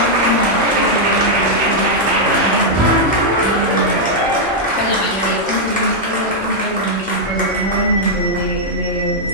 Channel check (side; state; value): both; normal; correlation -0.04